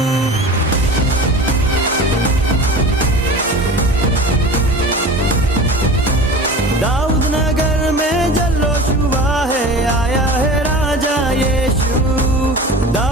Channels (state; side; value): normal; both; correlation 0.35